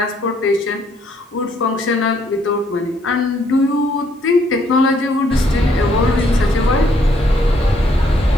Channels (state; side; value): normal; both; correlation 0.69